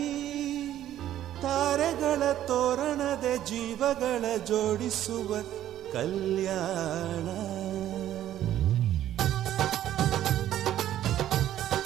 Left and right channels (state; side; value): quieter; left; 12.2 dB